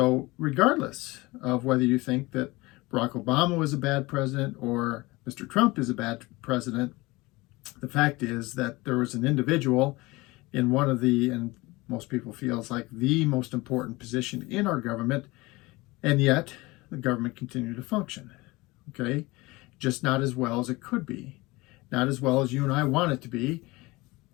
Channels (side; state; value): right; quieter; 22.0 dB